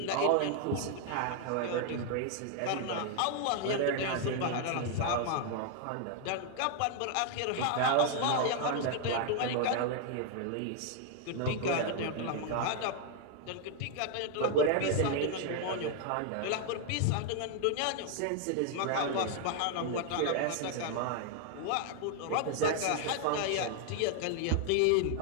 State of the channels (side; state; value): both; different; correlation 0.00